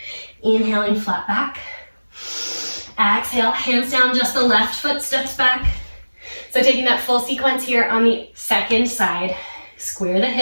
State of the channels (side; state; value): both; inverted; correlation -1.00